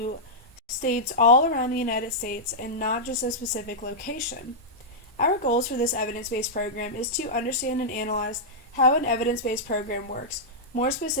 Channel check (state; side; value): normal; both; correlation -0.09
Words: states all around the United States and not just a specific location. Our goals for this evidence-based program is to understand and analyze how an evidence-based program works, more